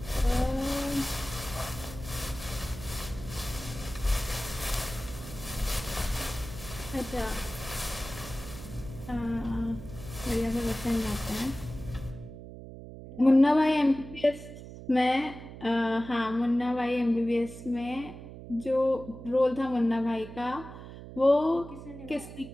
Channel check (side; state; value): right; noise; hum, 13 dB below the sound